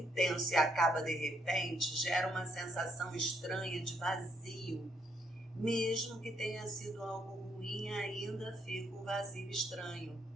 e acaba de repente gera uma sensação estranha de vazio. Mesmo que tenha sido algo ruim, ainda fica um vazio estranho.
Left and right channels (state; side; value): normal; both; correlation 0.73